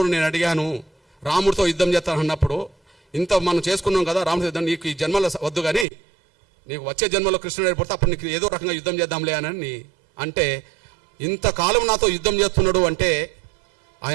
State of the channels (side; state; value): left; drops out; at 5.9 s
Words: నేను అడిగాను, రాముడితో యుద్ధం చేస్తాను అన్నప్పుడు, ఇంత మనం చేసుకున్నాం కదా రాముడితో యుద్ధం, నీకు ఈ జన్మలో వద్దు కానీ నీకు వచ్చే జన్మలో కృష్ణుడు ఏర్పడితే అప్పుడు నీకు ఏదో రకంగా యుద్ధం చేద్దాంలే అని అంటే, ఇంతకాలం నాతో యుద్ధం చేస్తున్నాడు అంటే